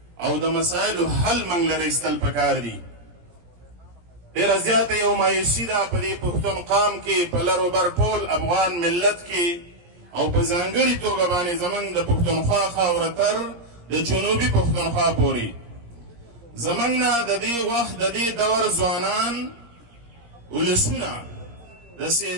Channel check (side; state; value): left; late; 17 ms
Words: او د مسایلو حل موږ له ایستل پکار دي. ډېره زیاته یو مایوسي ده په دې پښتون قام کې، په لر و بر ټول افغان ملت کې، او په ځانګړې توګه باندې زموږ د پښتونخوا خاوره تر د جنوبي پښتونخوا پورې زموږ نه د دې وخت د دې دور ځوانان ولسونه د